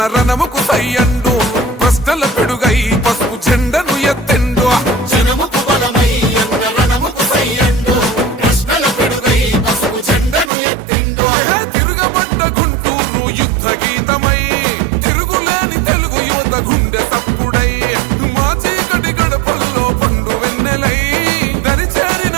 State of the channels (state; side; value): drops out; left; at 10.5 s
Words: రణముకు సై అండు ప్రశ్నల పెడుగై పసుపు జెండను ఎత్తెండు జనముకు బలమై అన్న రణముకు సై అండు ప్రశ్నల పెడుగై పసుపు జెండను ఎత్తెండు తిరుగబడ్డ గుంటూరు యుద్ధ గీతమై తిరుగులేని తెలుగు యువత గుండె సప్పుడై మా చీకటి గడపల్లో పండు వెన్నెలై